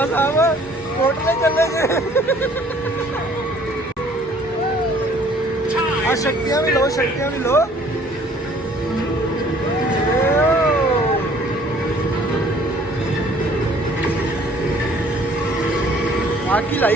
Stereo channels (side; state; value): both; normal; correlation 0.57